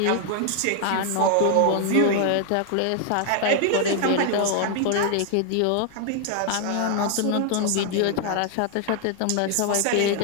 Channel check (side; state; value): both; different; correlation 0.00